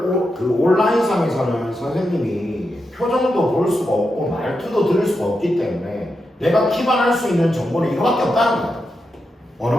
선생님이 표정도 볼 수가 없고 말투도 들을 수가 없기 때문에 내가 기반할 수 있는 정보는 이거밖에 없다는 거야.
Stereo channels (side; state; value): both; normal; correlation 0.87